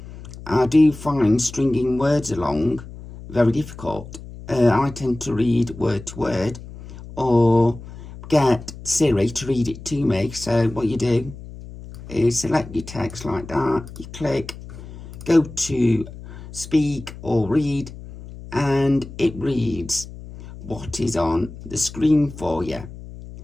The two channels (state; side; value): noise; left; hum, 14 dB below the sound